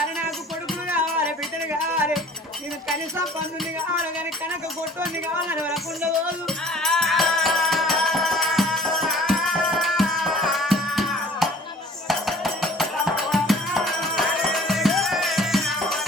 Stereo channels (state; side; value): normal; both; correlation 0.50